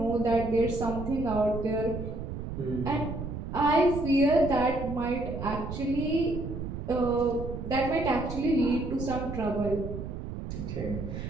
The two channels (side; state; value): right; noise; rumble, 7 dB below the sound